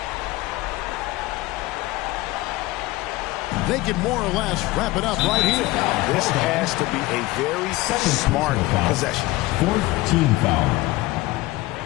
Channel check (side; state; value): right; quieter; 19.2 dB